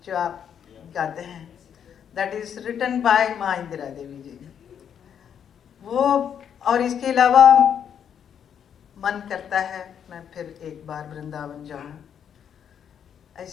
जो आप गाते हैं, दैट इज रिटन बाय माँ इंदिरा देवी जी। वो और इसके अलावा मन करता है मैं फिर एक बार वृंदावन जाऊं,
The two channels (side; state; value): right; quieter; 8.4 dB